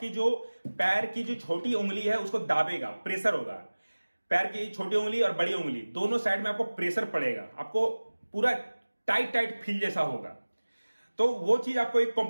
जो पैर की जो छोटी उंगली है उसको दाबेगा, प्रेशर होगा। पैर की छोटी उंगली और बड़ी उंगली दोनों साइड में आपको प्रेशर पड़ेगा, आपको पूरा टाइट फील जैसा होगा। तो वो चीज आपको एक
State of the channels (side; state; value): both; inverted; correlation -1.00